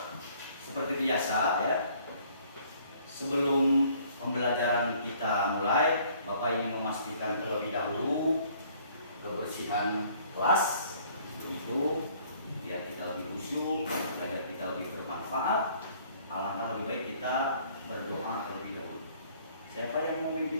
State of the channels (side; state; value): both; inverted; correlation -0.59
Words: Seperti biasa ya, sebelum pembelajaran kita mulai, Bapak ingin memastikan terlebih dahulu kebersihan kelas, itu biar kita lebih khusyuk, belajar kita lebih bermanfaat. Alangkah lebih baik kita berdoa terlebih dahulu. Siapa yang mau